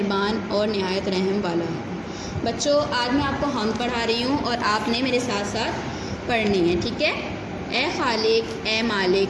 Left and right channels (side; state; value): both; identical; correlation 1.00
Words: اور نہایت رحم والا ہے۔ بچوں، آج میں آپ کو حمد پڑھا رہی ہوں اور آپ نے میرے ساتھ ساتھ پڑھنی ہے، ٹھیک ہے؟ اے خالق اے